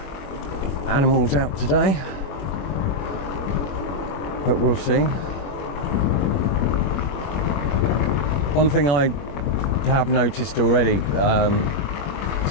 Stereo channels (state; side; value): late; right; 21 ms